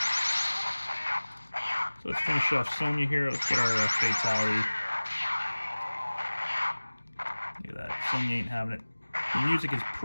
So let's finish off Sonya here. Let's get our fatality. Look at that. Sonya ain't having it. The music is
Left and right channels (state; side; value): inverted; both; correlation -1.00